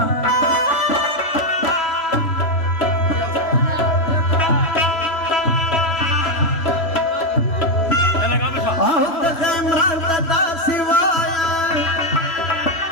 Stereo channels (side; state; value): right; late; 3.0 ms